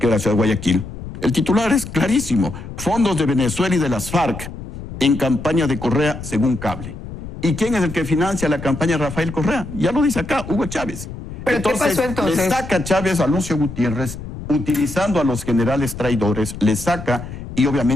de la ciudad de Guayaquil. El titular es clarísimo: fondos de Venezuela y de las FARC en campaña de Correa según Cable. ¿Y quién es el que financia la campaña de Rafael Correa? Ya lo dice acá, Hugo Chávez. ¿Pero qué pasó entonces? Le saca Chávez a Lucio Gutiérrez, utilizando a los generales traidores, le saca, y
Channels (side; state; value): left; noise; rumble, 11 dB below the sound